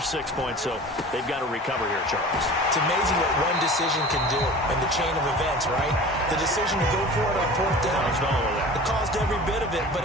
points, so they've got to recover here, Charles. It's amazing what one decision can do in the chain of events, right? The decision to go for it on 4th down, it caused every bit of it, but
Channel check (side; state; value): both; normal; correlation 0.39